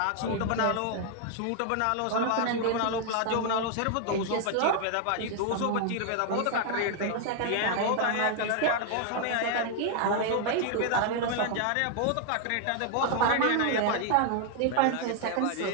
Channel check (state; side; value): different; both; correlation 0.00